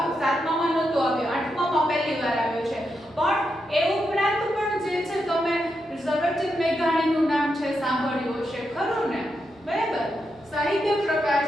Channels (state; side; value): normal; both; correlation 0.84